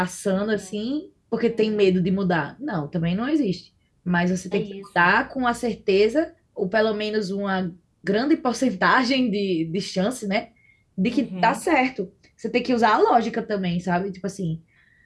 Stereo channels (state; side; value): identical; both; correlation 1.00